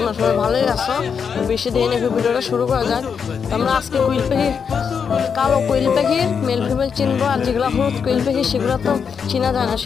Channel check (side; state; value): right; quieter; 6.6 dB